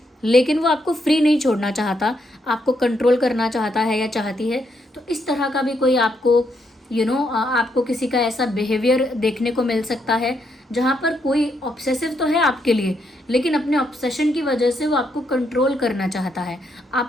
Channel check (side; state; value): both; normal; correlation 0.77